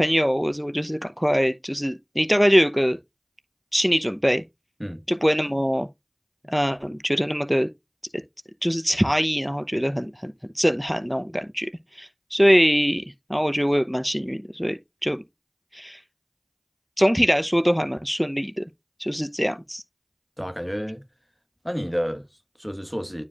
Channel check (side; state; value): both; identical; correlation 1.00